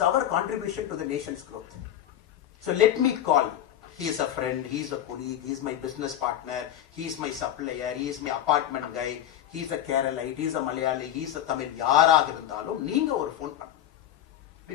our contribution to the nation's growth. So let me call. He is a friend, he is a colleague, he is my business partner, he is my supplier, he is my apartment guy, he is a Keralite, he is a Malayali, he is a Tamil. யாராக இருந்தாலும் நீங்க ஒரு phone பண்ணணும்.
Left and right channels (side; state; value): right; quieter; 11.5 dB